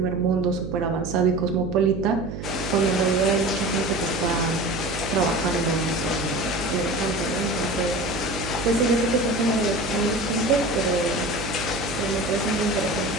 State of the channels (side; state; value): right; noise; hum, 8 dB below the sound